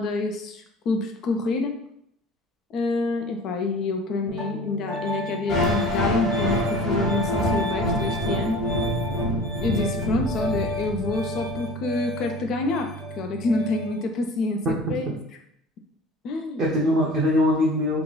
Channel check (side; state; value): both; normal; correlation 0.42